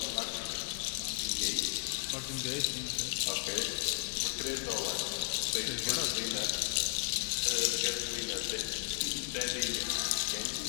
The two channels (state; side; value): silent; right; 55 dB below the other